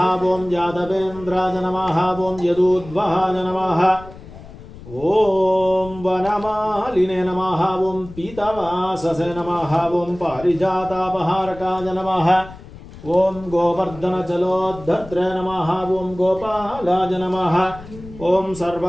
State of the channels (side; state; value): left; noise; rumble, 16 dB below the sound